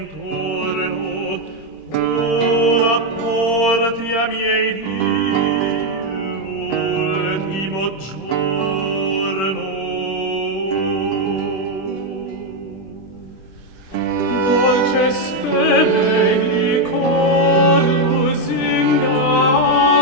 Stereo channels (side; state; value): right; late; 26 ms